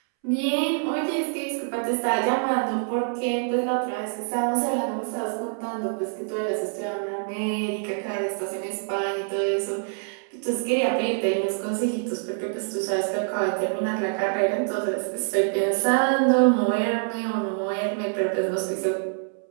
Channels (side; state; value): left; silent; 61 dB below the other